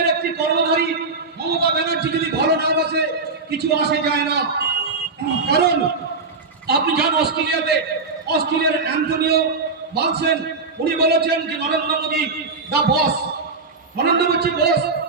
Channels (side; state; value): left; quieter; 4.1 dB